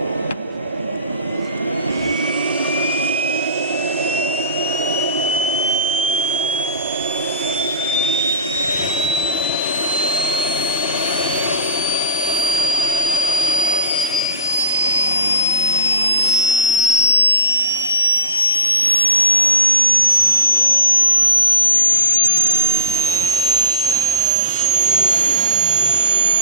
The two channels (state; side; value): inverted; both; correlation -0.39